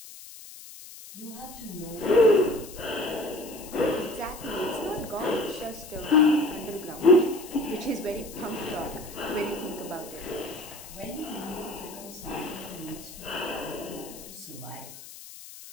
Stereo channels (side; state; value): left; noise; hiss, 15 dB below the sound